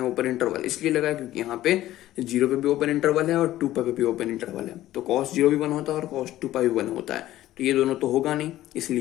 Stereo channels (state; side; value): quieter; right; 14.5 dB